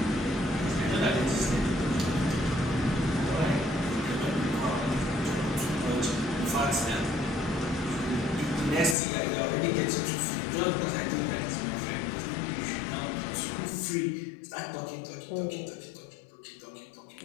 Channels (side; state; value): right; drops out; at 9.0 s